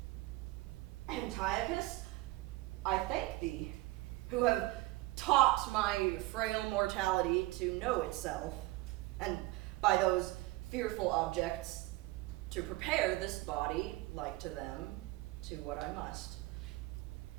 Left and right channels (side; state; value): left; quieter; 19.8 dB